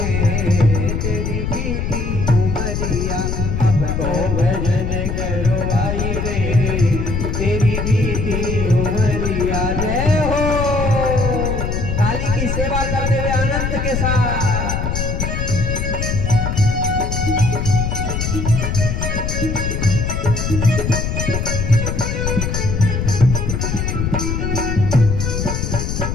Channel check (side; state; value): left; noise; rumble, 1 dB below the sound